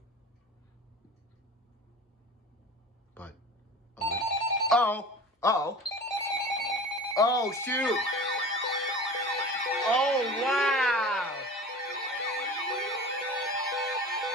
But... Oh, shoot! Oh, wow!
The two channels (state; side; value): normal; both; correlation 0.37